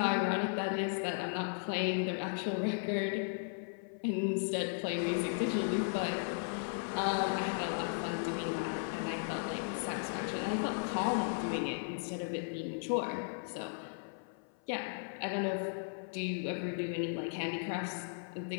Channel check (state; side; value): silent; right; 54 dB below the other